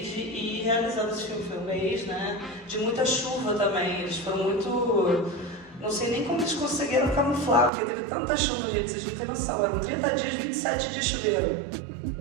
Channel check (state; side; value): drops out; left; at 7.7 s